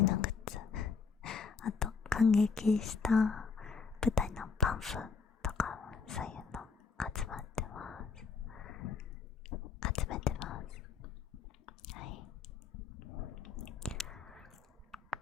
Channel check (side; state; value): right; quieter; 5.3 dB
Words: グッズ、あと感激した舞台のパンフとか、そういうの集めてます。はい。